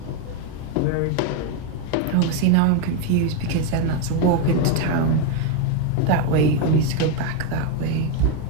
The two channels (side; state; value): both; different; correlation 0.02